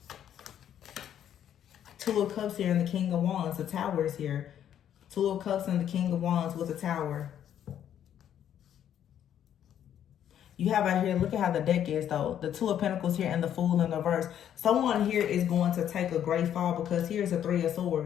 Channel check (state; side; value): quieter; right; 10.0 dB